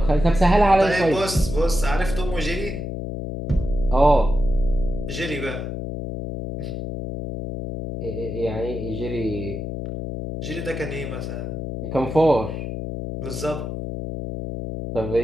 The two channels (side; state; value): left; noise; hum, 6 dB below the sound